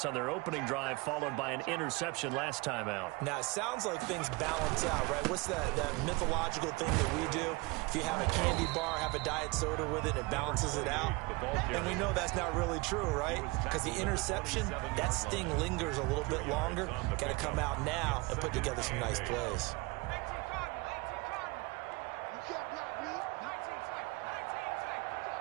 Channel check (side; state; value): left; quieter; 25.6 dB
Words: on their opening drive followed by an interception last time out. Now, it sounds like things balance out, right? What's that mythological thing that we do? If you have a candy bar, have a diet soda with it, it balances it out. And we know that's not really true, right? Because the interception, that sting lingers a little bit longer. Got to come out now and put together some nice plays.